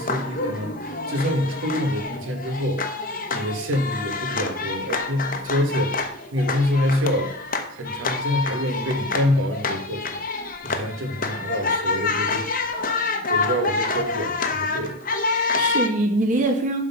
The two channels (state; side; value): noise; right; hiss, 29 dB below the sound